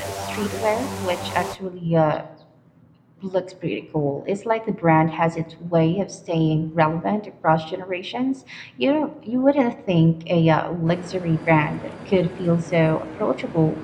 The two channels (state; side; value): identical; both; correlation 1.00